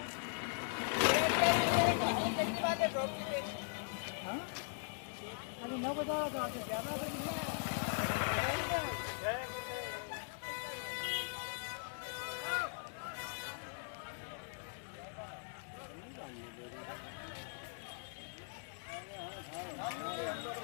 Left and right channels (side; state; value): right; silent; digital silence